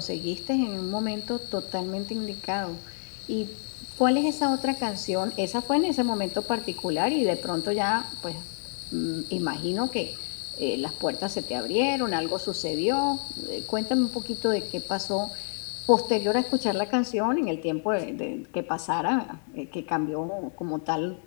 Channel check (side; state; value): right; silent; 59 dB below the other